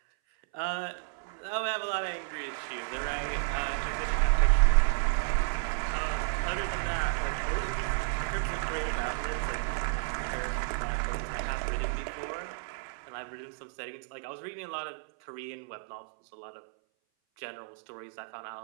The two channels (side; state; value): left; silent; 57 dB below the other